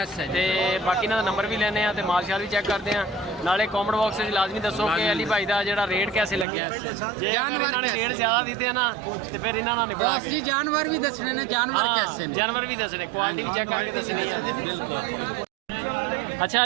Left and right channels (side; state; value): left; drops out; at 6.5 s